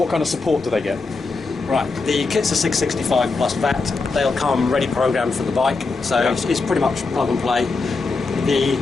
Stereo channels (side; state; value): right; quieter; 4.0 dB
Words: kind of support do they get? Right, the kits are $665 plus VAT. They'll come ready programmed for the bike, so yeah. it's pretty much plug and play.